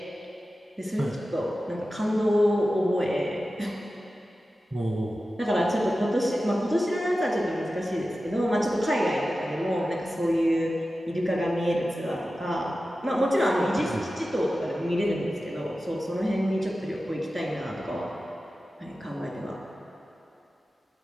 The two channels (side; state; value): both; normal; correlation 0.94